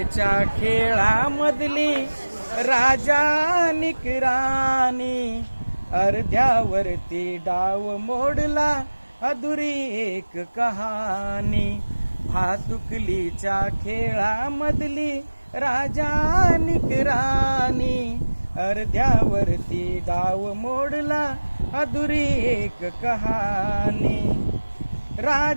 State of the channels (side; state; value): both; inverted; correlation -1.00